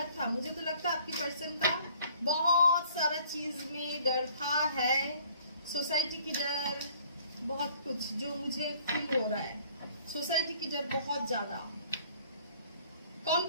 था, मुझे तो लगता है आपकी पर्सन का बहुत सारा चीज में डर था, है सोसाइटी की डर, बहुत कुछ जो मुझे फील हो रहा है। सोसाइटी की डर बहुत ज्यादा,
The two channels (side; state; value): both; inverted; correlation -0.55